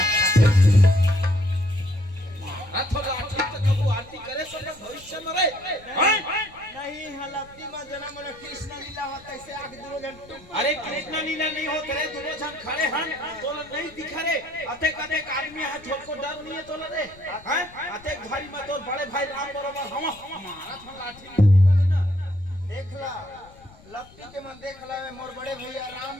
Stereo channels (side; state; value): left; noise; rumble, 23 dB below the sound